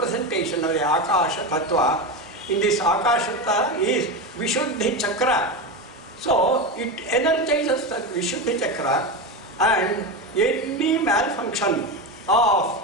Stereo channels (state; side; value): normal; both; correlation 0.18